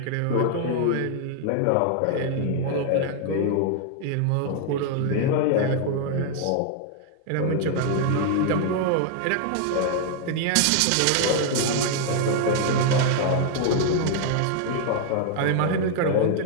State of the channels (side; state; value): both; different; correlation 0.00